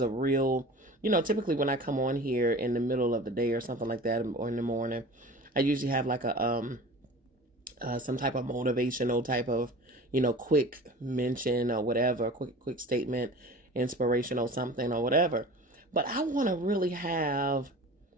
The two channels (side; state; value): both; normal; correlation 0.38